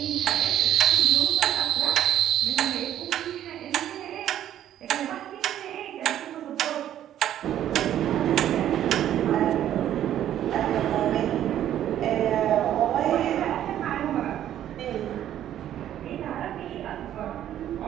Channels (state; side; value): quieter; left; 11.4 dB